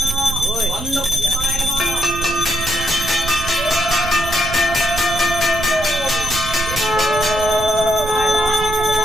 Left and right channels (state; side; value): noise; right; rumble, 9 dB below the sound